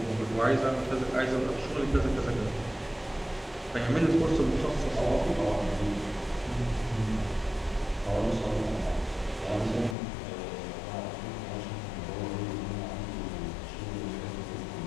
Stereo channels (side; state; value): right; drops out; at 10.0 s